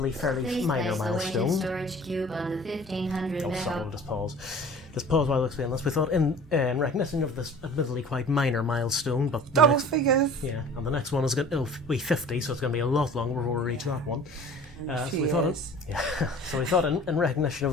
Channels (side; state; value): both; normal; correlation 0.44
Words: fairly minor milestone... Please place the weighted storage cube on the 1500 Oh, sorry, we'll just pause. Just pause while I explain this. We thought in recognition of this admittedly quite minor milestone, but... Double figures! Yeah, and the next one is going to be 50, so it's going to be a lot longer before we reach that one. So we thought, in recognition